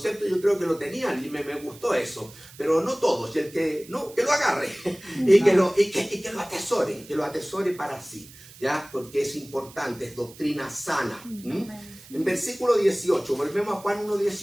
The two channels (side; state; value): right; noise; hiss, 20 dB below the sound